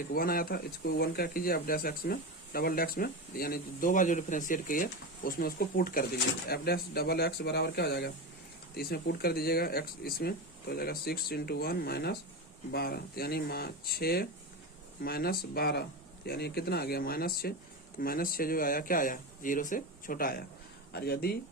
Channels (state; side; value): normal; both; correlation 0.20